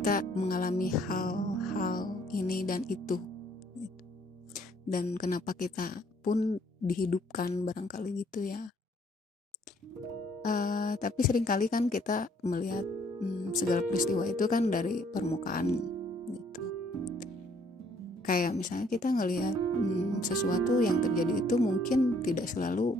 mengalami hal-hal ini dan itu gitu. Dan kenapa kita pun dihidupkan barangkali gitu ya. Tapi seringkali kan kita melihat segala peristiwa itu kan dari permukaan gitu. Kayak misalnya kita ngelihat sesuatu yang terjadi itu mungkin tidak selalu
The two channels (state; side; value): normal; both; correlation 0.63